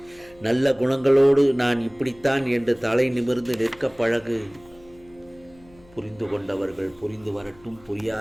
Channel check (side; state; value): left; noise; hum, 27 dB below the sound